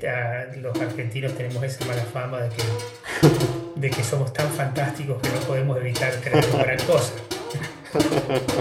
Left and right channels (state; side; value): identical; both; correlation 1.00